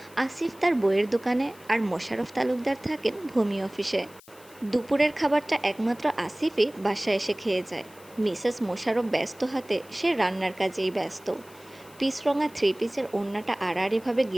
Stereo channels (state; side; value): noise; left; hiss, 24 dB below the sound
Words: আসিফ তার বইয়ের দোকানে, আর মোশাররফ তালুকদার থাকেন ভূমি অফিসে। দুপুরের খাবারটা একমাত্র আসিফই বাসায় এসে খেয়ে যায়। মিসেস মোশাররফ ব্যস্ত হাতে সে রান্নার কাজেই ব্যস্ত। পিচরঙা থ্রি পিসের ওড়নাটা আড়াআড়িভাবে